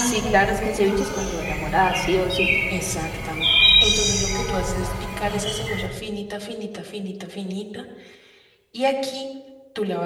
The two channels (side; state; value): both; identical; correlation 1.00